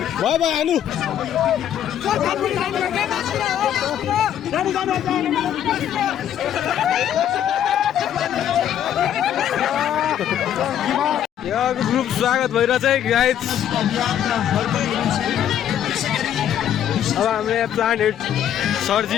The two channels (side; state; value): right; quieter; 10.2 dB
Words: भयो भयो हान्नु यहाँको ग्रुप स्वागत भइरहेछ है गाइज अब हाम्रो यहाँ प्लान्ट हेड